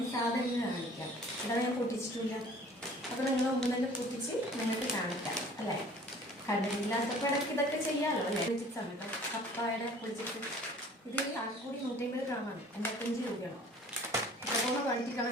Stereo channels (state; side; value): normal; both; correlation 0.50